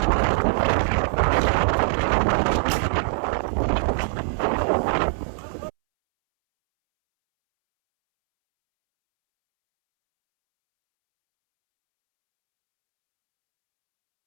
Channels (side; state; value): left; silent; 64 dB below the other